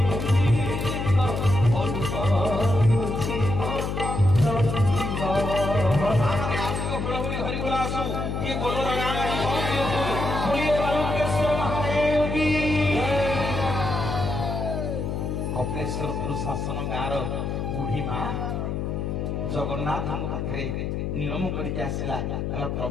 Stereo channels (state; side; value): noise; left; hum, 2 dB below the sound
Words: कपिलेश्वरपुर शासन गाँव बुढ़ी माँ जगन्नाथ पाखे नियम करके आसला कहला